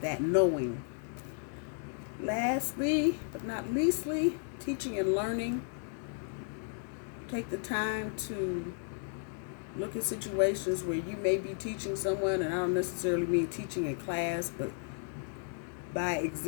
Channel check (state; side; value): silent; right; 55 dB below the other